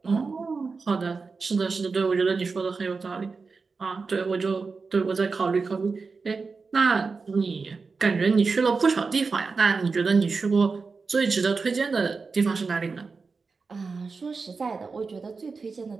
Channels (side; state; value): left; quieter; 4.5 dB